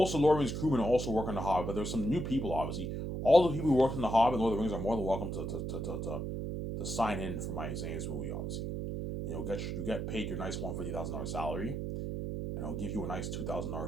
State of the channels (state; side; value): noise; right; hum, 3 dB below the sound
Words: of Lord of the Rings crewmen also work on The Hobbit, but there's some new people, obviously. All the people who worked in The Hobbit and Lord of the Rings are more than welcome to sign in for my Zane's movie, obviously. And you get paid your nice $150,000 salary, and I'll give you a nice